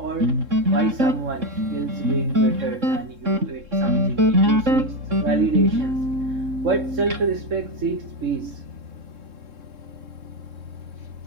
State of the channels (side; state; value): left; late; 3.7 ms